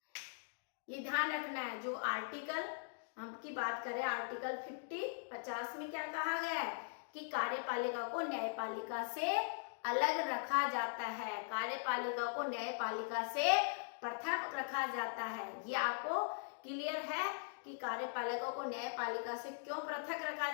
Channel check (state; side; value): silent; right; digital silence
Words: ये ध्यान रखना है, जो आर्टिकल हम की बात करें, आर्टिकल 50 में क्या कहा गया है कि कार्यपालिका को न्यायपालिका से अलग रखा जाता है, कार्यपालिका को न्यायपालिका से पृथक रखा जाता है। ये आपको क्लियर है कि कार्यपालिका को न्यायपालिका से क्यों पृथक रखा